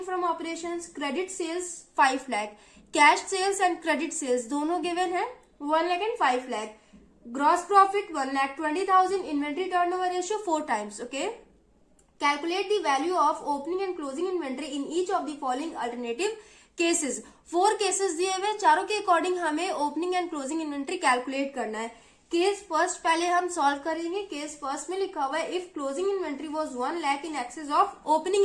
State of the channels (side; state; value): both; identical; correlation 1.00